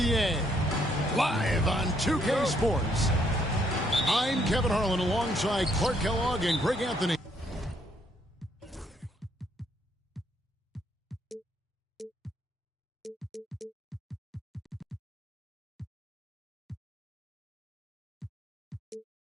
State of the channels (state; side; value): normal; both; correlation 0.70